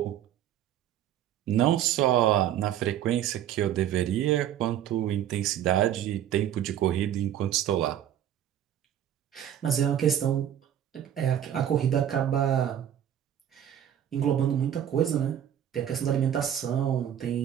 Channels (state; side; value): quieter; left; 10.5 dB